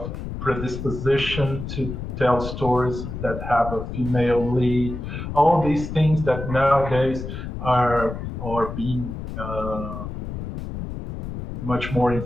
predisposition to tell stories that have a female lead. All these things that nowadays are being much more in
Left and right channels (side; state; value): left; noise; rumble, 7 dB below the sound